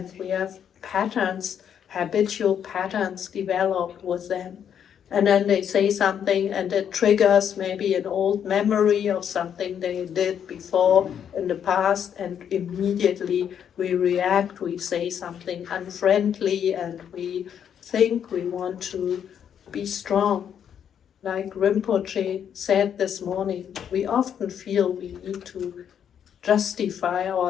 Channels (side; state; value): right; quieter; 8.6 dB